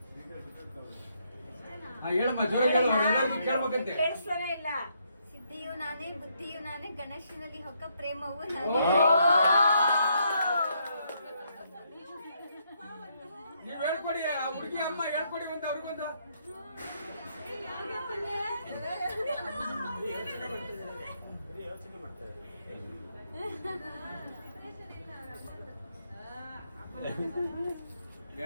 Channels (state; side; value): inverted; both; correlation -0.74